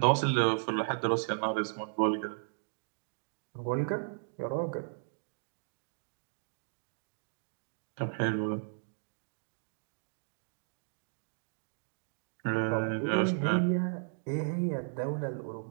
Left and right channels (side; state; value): left; silent; digital silence